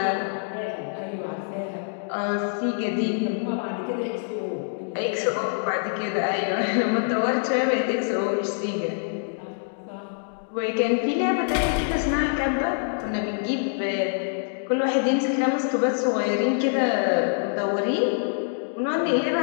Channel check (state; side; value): silent; right; digital silence